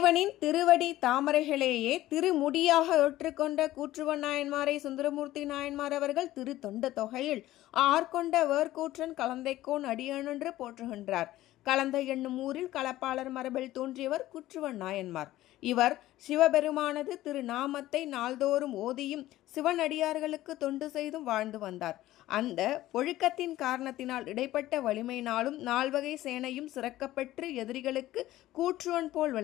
திருவடி தாமரைகளையே திருமுடியாக ஏற்றுக்கொண்ட கூற்றுவன் நாயன்மாரை சுந்தரமூர்த்தி நாயன்மார் அவர்கள் திரு தொண்ட தொகையில் ஆர்கொண்ட வேர்கூற்றன் கலந்தைக்கோன் அடியனென்று போற்றுகின்றார். கலந்தை என்னும் ஊரில் களப்பாளர் மரபில் தோன்றியவர் கூற்றுவன் நாயன்மார். இவர் சிவபெருமானது திருநாமத்தை நாள்தோறும் ஓதியும் சிவனடியார்களுக்கு தொண்டு செய்தும் வாழ்ந்து வந்தார். அந்த ஒழுக்கத்தின் காரணத்தினால் இடைப்பட்ட வலிமையினாலும் நால்வகை சேனையும் சிறக்கப்பெற்று எதிரிகளுக்கு கூற்றுவன் போல்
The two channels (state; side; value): quieter; right; 15.4 dB